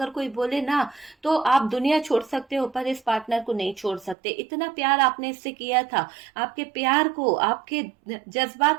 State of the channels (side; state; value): left; drops out; at 4.2 s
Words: कोई बोले ना तो आप दुनिया छोड़ सकते हो पर इस पार्टनर को नहीं छोड़ सकते। इतना प्यार आपने इससे किया था, आपके प्यार को, आपके